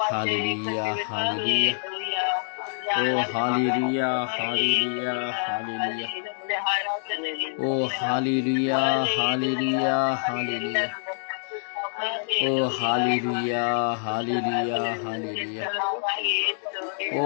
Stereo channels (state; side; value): silent; right; digital silence